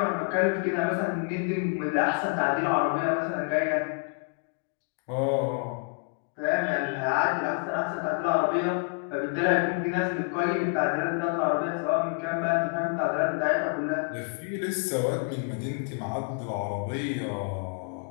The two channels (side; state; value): right; quieter; 38.4 dB